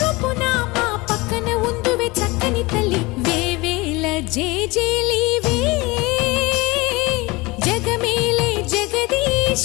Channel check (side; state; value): right; quieter; 23.3 dB